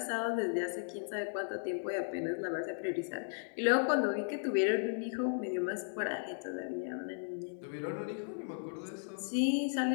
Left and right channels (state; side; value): silent; right; digital silence